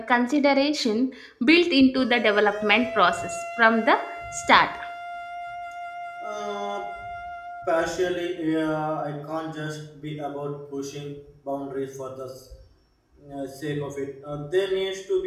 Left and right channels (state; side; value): identical; both; correlation 1.00